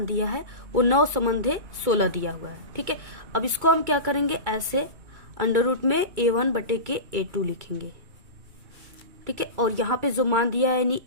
दिया है वो 9 संबंधे 16 दिया हुआ है, ठीक है। अब इसको हम क्या करेंगे, ऐसे अंडर रूट में A1 बटे के A2 लिखेंगे, ठीक है, और यहाँ पे जो मान दिया है यानी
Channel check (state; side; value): late; left; 2.3 ms